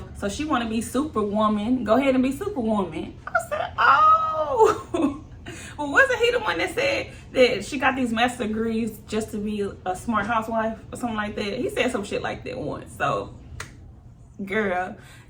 so she want to be Superwoman. Go ahead and be Superwoman. I said, oh. Well, wasn't he the one that said that she got these master degrees just to be a smart housewife or something like that? He said some shit like that once. So, girl,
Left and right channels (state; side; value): identical; both; correlation 1.00